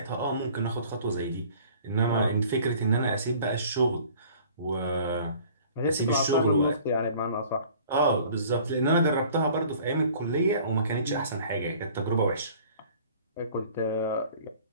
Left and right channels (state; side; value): inverted; both; correlation -0.50